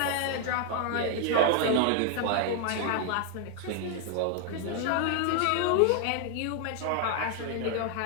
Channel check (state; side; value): different; both; correlation 0.00